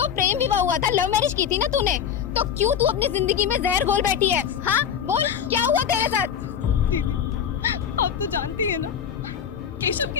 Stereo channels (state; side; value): quieter; right; 8.3 dB